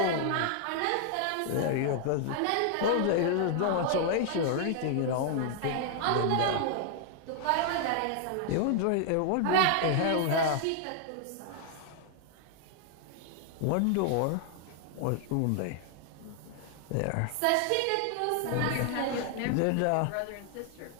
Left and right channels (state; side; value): different; both; correlation 0.00